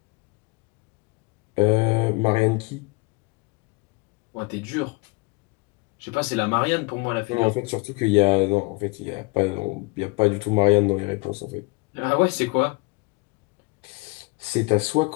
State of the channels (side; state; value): right; quieter; 27.0 dB